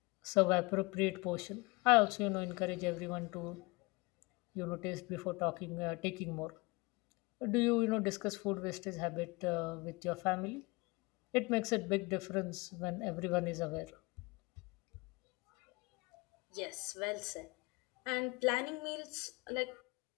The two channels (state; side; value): quieter; right; 25.6 dB